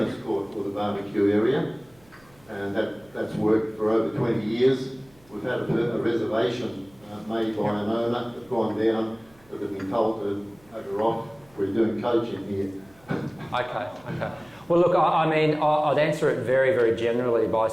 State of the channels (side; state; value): right; noise; hum, 30 dB below the sound